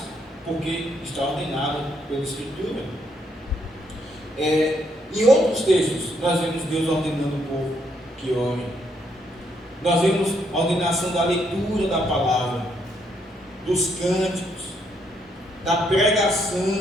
porque está ordenado pela Escritura. Em outros textos, nós vemos Deus ordenando o povo que ore. Nós vemos a ordenação da leitura da palavra, dos cânticos, da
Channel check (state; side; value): normal; both; correlation 0.73